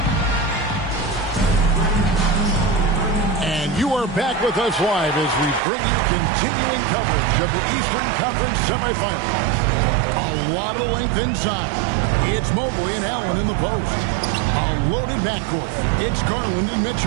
And you are back with us live as we bring you continuing coverage of the Eastern Conference Semifinals. A lot of length inside. It's Mobley and Allen in the post. A loaded backcourt. It's Garland and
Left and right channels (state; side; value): drops out; left; at 5.6 s